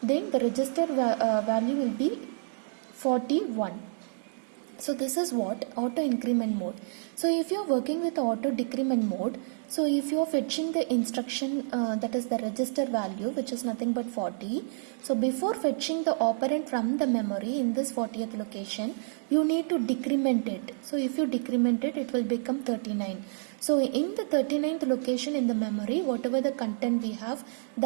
then the register value will be 41. So this is what auto increment mode. So if you are working with auto decrement mode, so if you are fetching the instruction that is the register value, which is nothing but 40, so before fetching the operand from the memory in this 40th location, you need to decrement it. So if you decrement it, it will become 39. So in the 39th location in the memory, whatever the content we have,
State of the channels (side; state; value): left; silent; digital silence